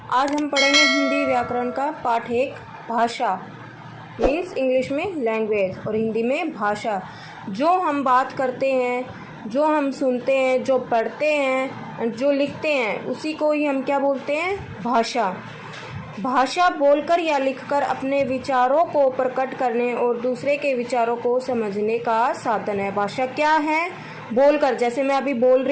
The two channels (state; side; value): identical; both; correlation 1.00